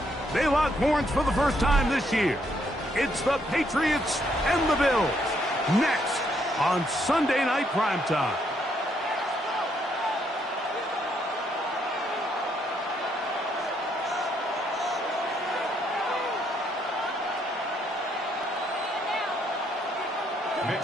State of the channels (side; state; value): both; normal; correlation 0.73